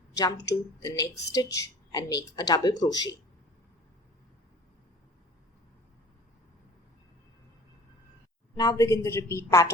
jump to the next stitch and make a double crochet. Now begin the repeat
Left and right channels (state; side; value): normal; both; correlation 0.46